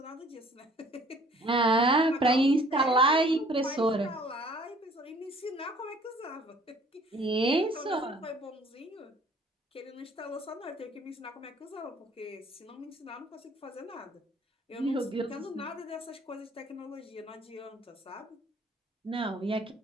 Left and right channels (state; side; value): normal; both; correlation 0.55